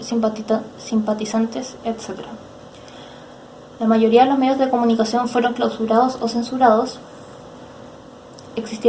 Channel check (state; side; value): identical; both; correlation 1.00